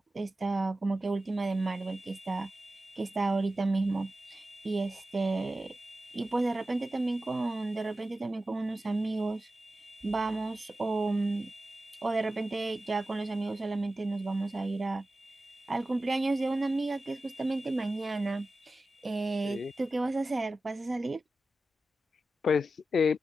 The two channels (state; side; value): normal; both; correlation 0.93